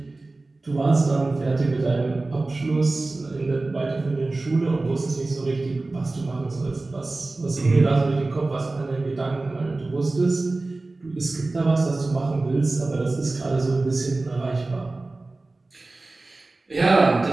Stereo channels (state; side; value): quieter; left; 3.2 dB